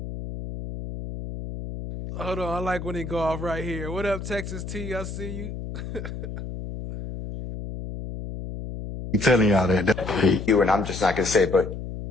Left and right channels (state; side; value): noise; left; hum, 8 dB below the sound